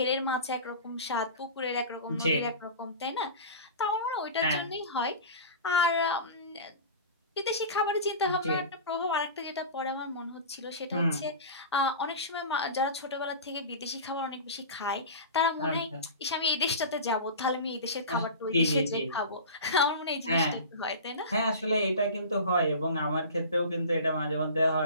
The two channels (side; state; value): both; inverted; correlation -0.33